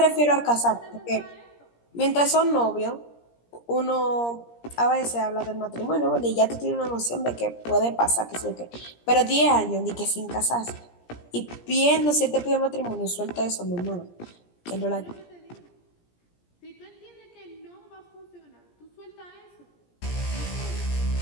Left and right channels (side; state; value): right; late; 17 ms